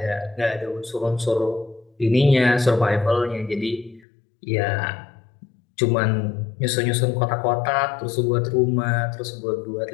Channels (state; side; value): drops out; right; at 4.0 s